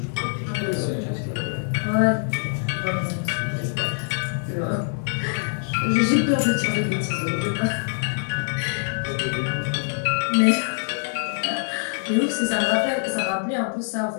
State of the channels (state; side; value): silent; right; 61 dB below the other